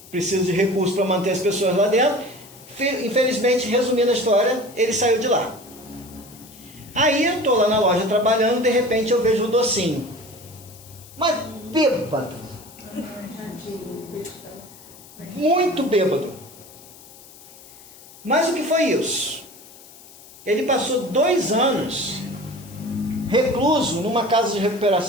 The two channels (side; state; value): left; noise; hiss, 21 dB below the sound